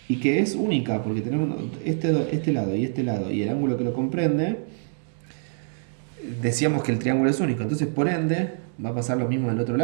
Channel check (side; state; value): left; silent; 62 dB below the other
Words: y que es única, porque tenemos este lado y el ángulo que lo comprende, decíamos que el triángulo es único, entonces por ende va a pasar lo mismo del otro